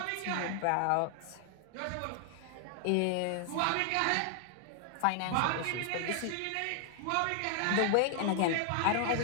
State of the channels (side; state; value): both; different; correlation 0.00